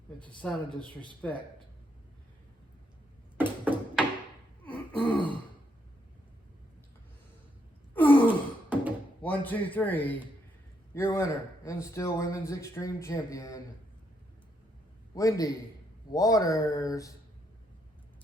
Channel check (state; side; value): normal; both; correlation 0.76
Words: It's a sign of disrespect. 1, 2, 3. Your winner and still women's extreme champion, Wendy Waters.